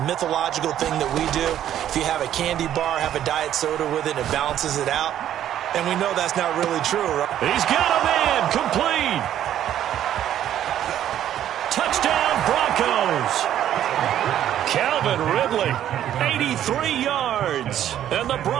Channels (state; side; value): quieter; left; 11.2 dB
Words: mythological thing that we do? If you have a candy bar, have a diet soda with it, it balances it out. And we know that's not really true, right? He's got a man, complete. Touchdown, Broncos. Calvin Ridley, 83 yards. And the